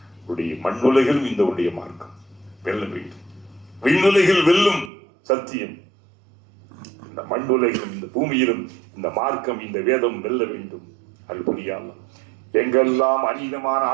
உடைய மண்ணுலகிலும் இந்த உடைய மார்க்கம் வெல்ல வேண்டும். விண்ணுலகில் வெல்லும் சத்தியம் இந்த மண்ணுலகிலும் இந்த பூமியிலும் இந்த மார்க்கம் இந்த வேதம் வெல்ல வேண்டும். அது புரியாமல் எங்கெல்லாம் அநீதமான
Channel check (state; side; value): drops out; left; at 4.9 s